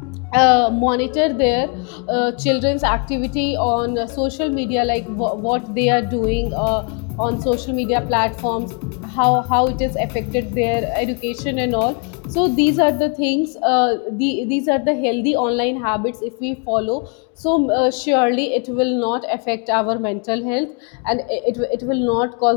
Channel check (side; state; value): right; quieter; 36.4 dB